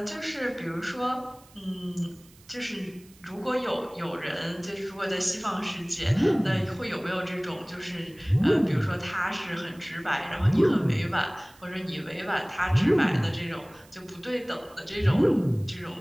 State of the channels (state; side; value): noise; right; hiss, 26 dB below the sound